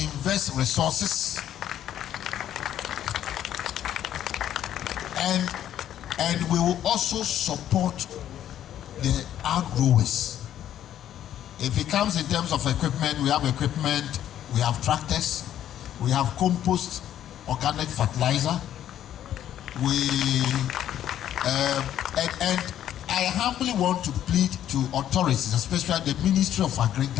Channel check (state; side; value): quieter; right; 11.1 dB